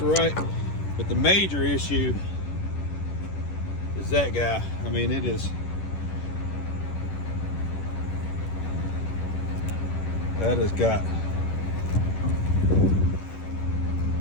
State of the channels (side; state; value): right; late; 11 ms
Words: right, but the major issue is that guy. I mean, it is. That has